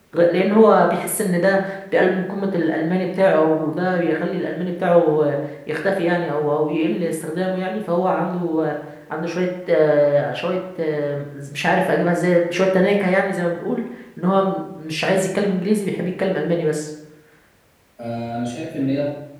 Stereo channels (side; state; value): both; identical; correlation 1.00